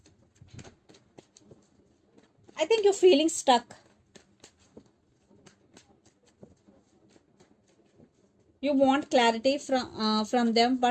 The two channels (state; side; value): identical; both; correlation 1.00